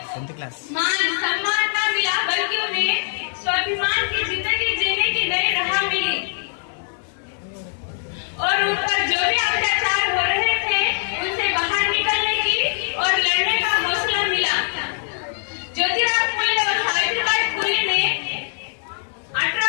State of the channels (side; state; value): right; silent; 64 dB below the other